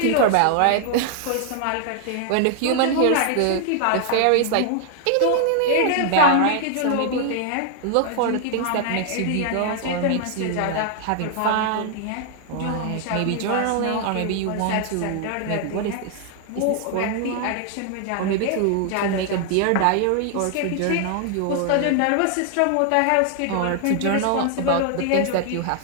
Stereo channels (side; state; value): both; different; correlation 0.00